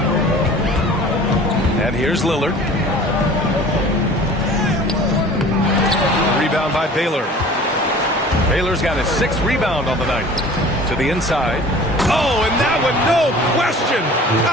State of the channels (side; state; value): both; normal; correlation 0.45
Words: And here's Lillard. Rebound by Baylor. Baylor's got his 6th rebound on the night. To the inside. Oh, and that one, no question,